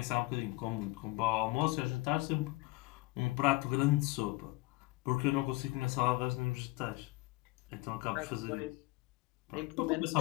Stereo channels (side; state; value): right; quieter; 22.0 dB